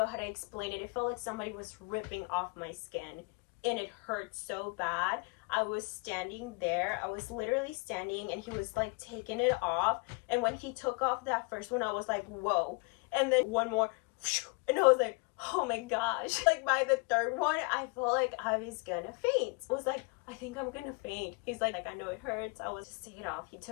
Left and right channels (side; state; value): right; quieter; 30.8 dB